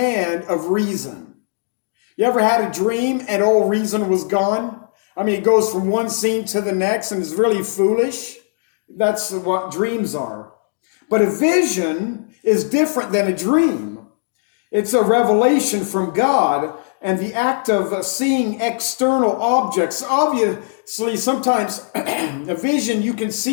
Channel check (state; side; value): silent; right; digital silence